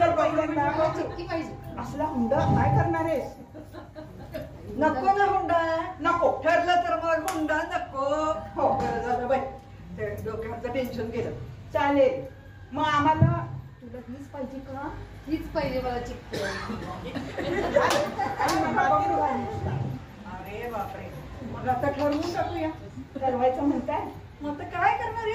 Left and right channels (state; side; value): identical; both; correlation 1.00